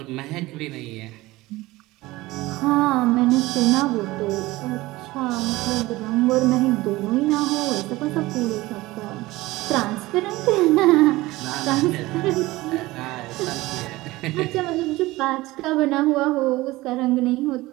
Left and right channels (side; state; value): left; quieter; 19.2 dB